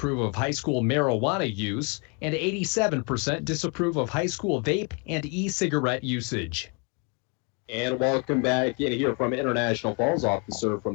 of high school marijuana use, and 87% disapprove of high school vape and e-cigarette usage. And welcome back in here from International Falls, off the serve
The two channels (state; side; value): quieter; right; 34.8 dB